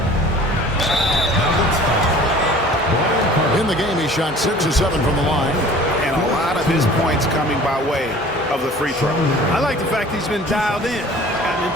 In the game, he shot 6 of 7 from the line. And a lot of his points coming by way of the free throw. I like the fact he's been dialed in, gotten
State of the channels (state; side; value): normal; both; correlation 0.47